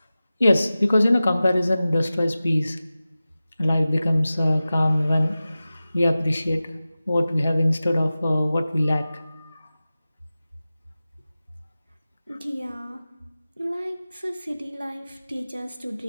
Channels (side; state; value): both; inverted; correlation -0.96